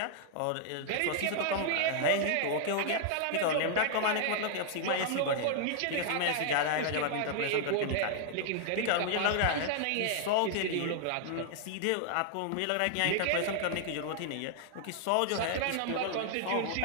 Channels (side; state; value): both; different; correlation 0.00